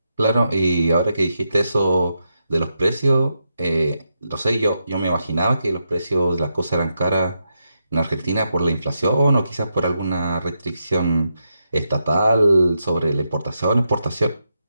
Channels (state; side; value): inverted; both; correlation -0.85